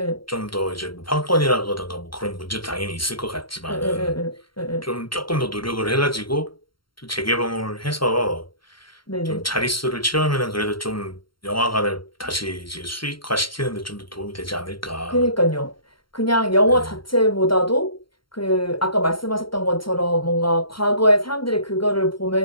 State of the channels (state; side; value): late; right; 0.73 ms